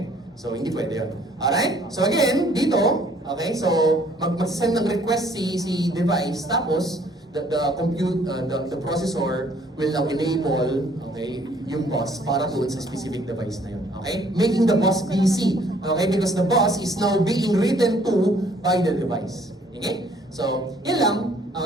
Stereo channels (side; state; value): both; normal; correlation 0.60